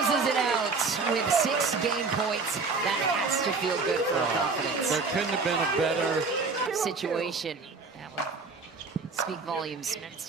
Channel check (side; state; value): left; quieter; 4.4 dB